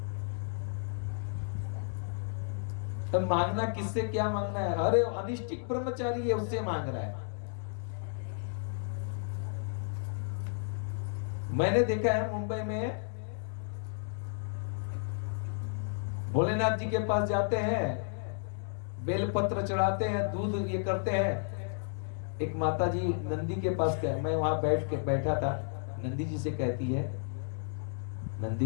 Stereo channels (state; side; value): silent; right; digital silence